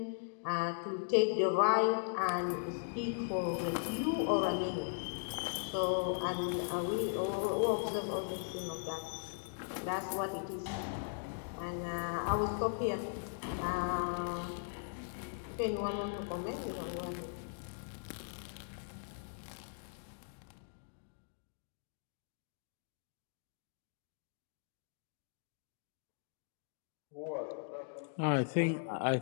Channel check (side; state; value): right; silent; digital silence